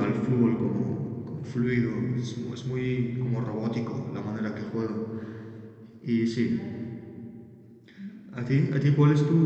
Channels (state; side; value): identical; both; correlation 1.00